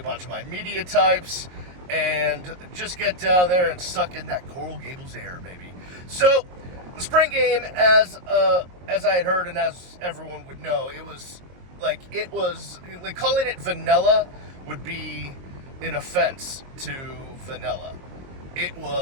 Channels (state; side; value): late; left; 22 ms